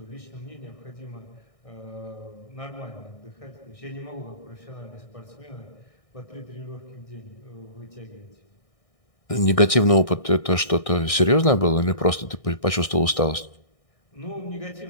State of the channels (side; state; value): right; late; 1.6 ms